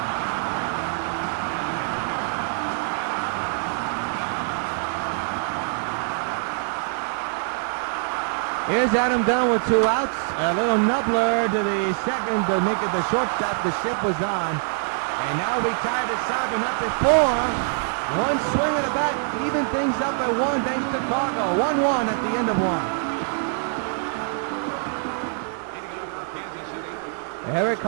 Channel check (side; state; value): left; silent; 62 dB below the other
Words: Here's Adam Dunn with 2 outs. A little nubbler to the second to make it the shortstop. The ship was on. And now we tied it 7 up at 4. One swing of the bat, even things up at 1 thanks to Chicago. 1-1 at the end of 1. Leading off for Kansas City. Eric